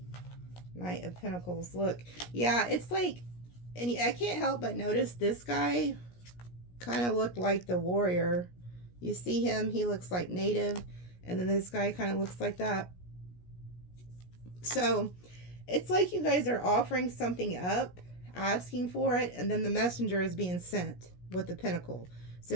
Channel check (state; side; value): late; right; 17 ms